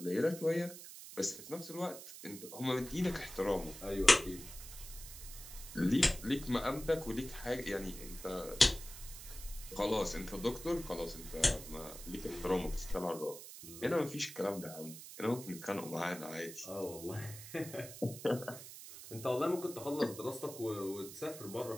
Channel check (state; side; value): noise; right; hiss, 13 dB below the sound